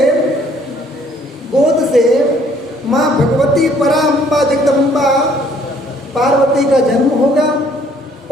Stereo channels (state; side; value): normal; both; correlation 0.62